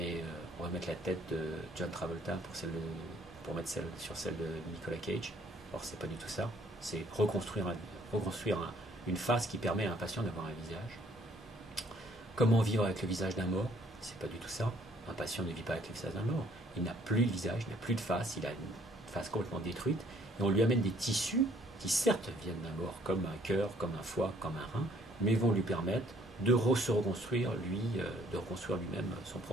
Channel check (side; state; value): both; normal; correlation 0.62